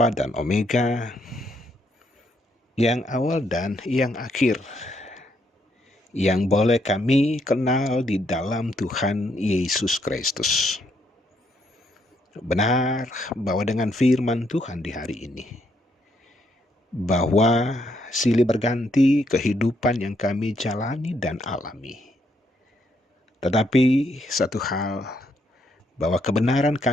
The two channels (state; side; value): normal; both; correlation 0.74